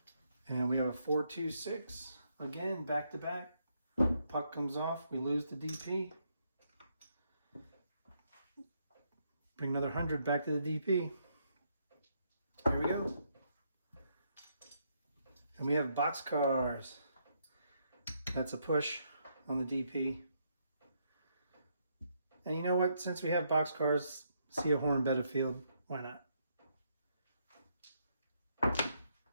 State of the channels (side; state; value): both; inverted; correlation -0.75